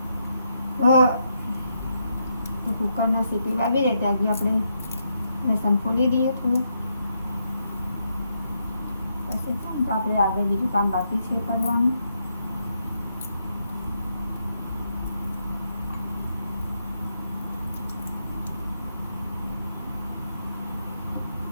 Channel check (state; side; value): inverted; both; correlation -0.79